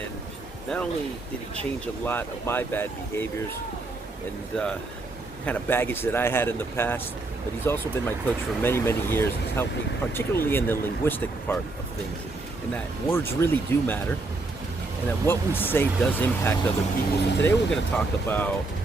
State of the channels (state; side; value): quieter; left; 3.3 dB